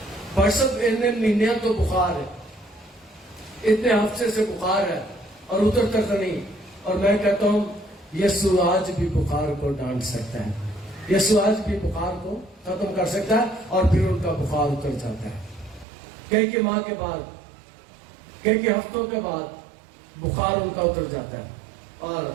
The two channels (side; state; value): left; drops out; at 15.9 s